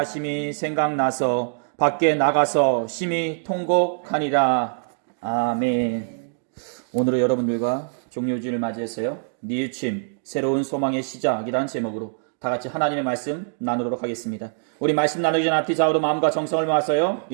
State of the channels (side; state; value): left; silent; digital silence